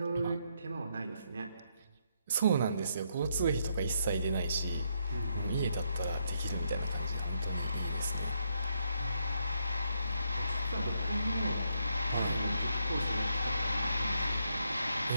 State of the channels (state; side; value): inverted; both; correlation -0.76